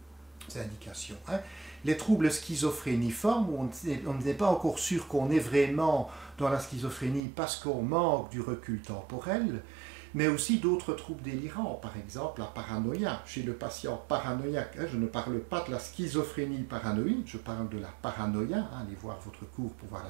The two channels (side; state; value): left; drops out; at 7.2 s